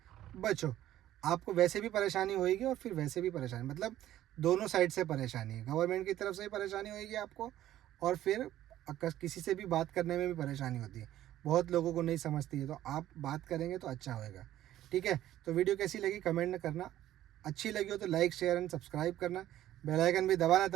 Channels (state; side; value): quieter; left; 13.2 dB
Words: बचो। आपको वैसे भी परेशानी होएगी और फिर वैसे भी परेशानी, मतलब दोनों साइड से परेशानी है। गवर्नमेंट की तरफ से भी परेशानी होएगी आपको, और फिर किसी से भी बात करने में भी परेशानी होती है। बहुत लोगों को नहीं समझती है, तो आप बात करेंगे तो अच्छा होएगा। ठीक है, तो वीडियो कैसी लगी कमेंट में करना। अच्छी लगी हो तो लाइक शेयर एंड सब्सक्राइब करना, बेल आइकन भी दबाना